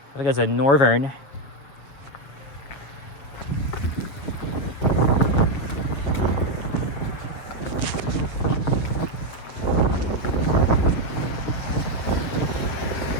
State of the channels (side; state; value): right; late; 7.3 ms